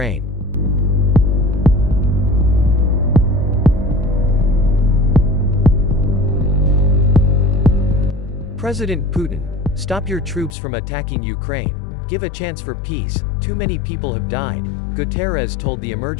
President Putin, stop your troops from attacking Ukraine. Give a chance for peace. Too many people have died, Guterres told the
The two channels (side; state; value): right; drops out; at 10.6 s